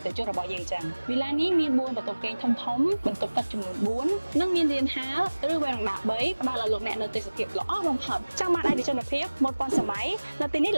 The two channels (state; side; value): inverted; both; correlation -1.00